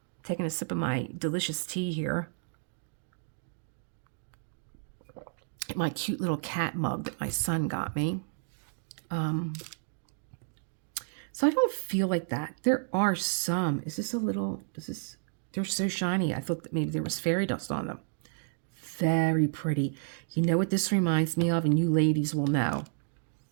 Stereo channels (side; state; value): left; silent; digital silence